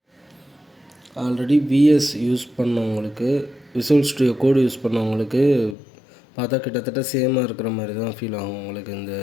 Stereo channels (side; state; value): right; drops out; at 5.8 s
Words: ஆல்ரெடி விஎஸ் யூஸ் பண்ணவங்களுக்கு, விசுவல் ஸ்டுடியோ கோடு யூஸ் பண்ணவங்களுக்கு பார்த்தா கிட்டத்தட்ட சேமாக இருக்கிற மாதிரி தான் ஃபீல் ஆகும் உங்களுக்கு இந்த